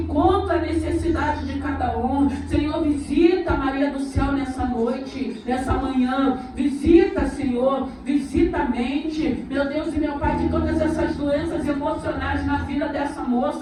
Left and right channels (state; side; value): identical; both; correlation 1.00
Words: à necessidade de cada um. Senhor, visita Maria do Céu nessa noite, nessa manhã, visita, Senhor, visita a mente, meu Deus e meu Pai, que todas essas doenças emocionais na vida dessa